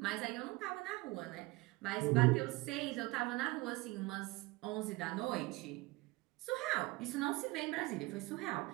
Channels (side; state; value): left; quieter; 22.2 dB